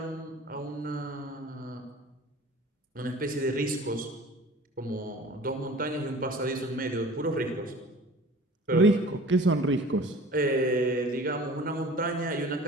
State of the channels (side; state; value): both; normal; correlation 0.44